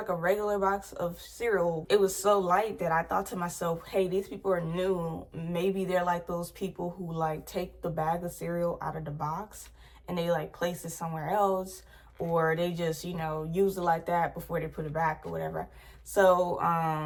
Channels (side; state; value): both; identical; correlation 1.00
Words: a regular box of cereal. It was so light that I thought to myself, hey, these people are new. Maybe they're like those people who like take the bag of cereal out of the box and they like place it somewhere else, or they just, you know, use it like that before they put it back or whatever. So